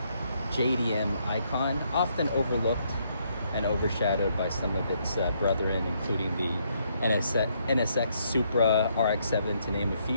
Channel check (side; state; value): both; inverted; correlation -0.73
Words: JDM icon, often overlooked and overshadowed by some of its brethren, including the NSX Supra, RX-7, to name a